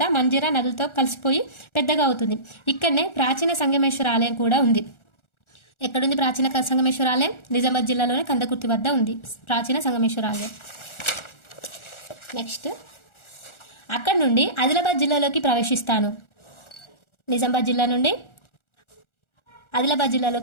మంజీరా నదులతో కలిసిపోయి పెద్దగా అవుతుంది. ఇక్కడనే ప్రాచీన సంగమేశ్వర ఆలయం కూడా ఉంది. ఎక్కడుంది ప్రాచీన సంగమేశ్వర ఆలయం, నిజామాబాద్ జిల్లాలోనే కందకుర్తి వద్ద ఉంది ప్రాచీన సంగమేశ్వర ఆలయం. నెక్స్ట్ అక్కడ నుండి ఆదిలాబాద్ జిల్లాలోకి ప్రవేశిస్తాను. నిజామాబాద్ జిల్లా నుండి ఆదిలాబాద్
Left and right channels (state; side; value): late; right; 1.4 ms